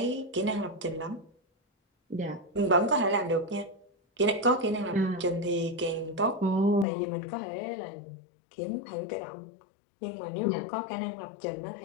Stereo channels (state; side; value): drops out; right; at 6.9 s